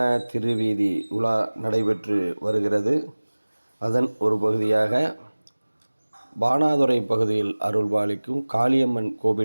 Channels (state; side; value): inverted; both; correlation -1.00